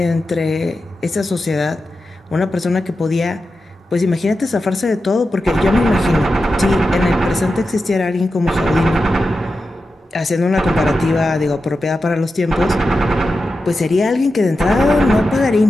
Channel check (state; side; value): normal; both; correlation 0.91